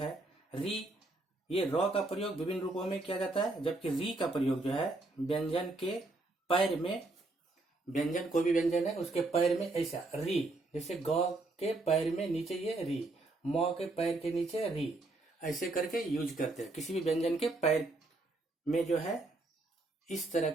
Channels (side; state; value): left; quieter; 3.0 dB